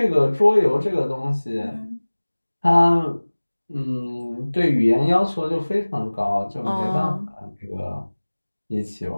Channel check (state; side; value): inverted; both; correlation -1.00